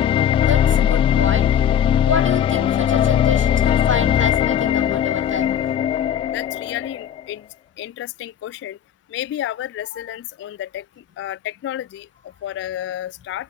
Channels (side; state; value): right; quieter; 9.3 dB